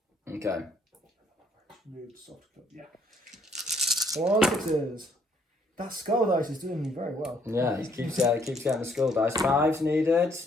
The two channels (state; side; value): normal; both; correlation 0.67